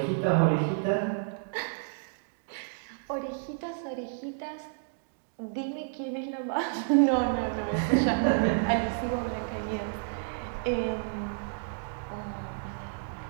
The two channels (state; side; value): silent; left; digital silence